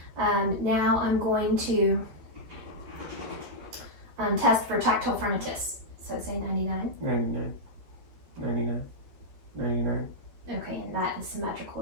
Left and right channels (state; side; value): late; left; 13 ms